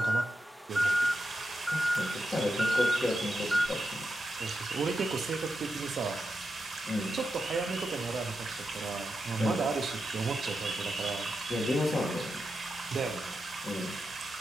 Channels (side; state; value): both; normal; correlation 0.88